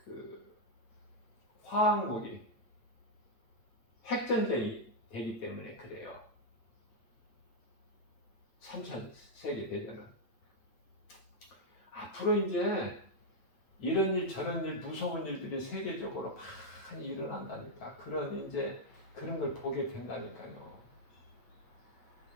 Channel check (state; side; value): late; right; 8.6 ms